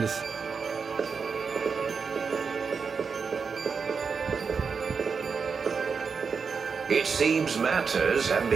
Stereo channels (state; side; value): quieter; left; 5.5 dB